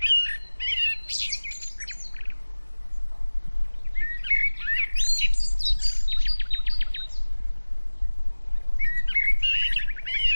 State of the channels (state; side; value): inverted; both; correlation -1.00